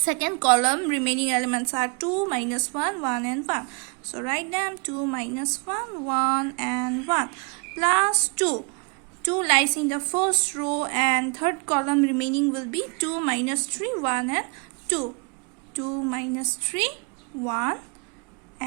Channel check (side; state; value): left; quieter; 34.6 dB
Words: column. Remaining elements are 2, minus 1, 1 and 1. So write them. 2, minus 1, 1 and 1 plus 2. 2 lies in the first row and third column. Remaining will be 2, minus 3, 1 and 2. 2, minus 3, 1